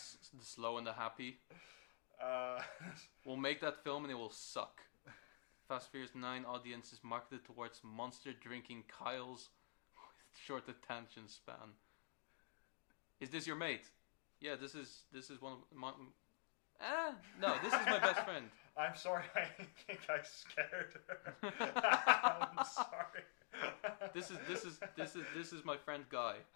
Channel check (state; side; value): silent; right; digital silence